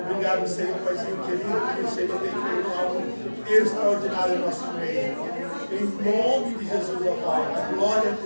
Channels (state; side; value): inverted; both; correlation -1.00